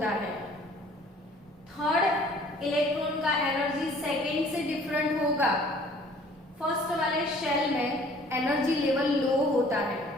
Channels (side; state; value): both; normal; correlation 0.54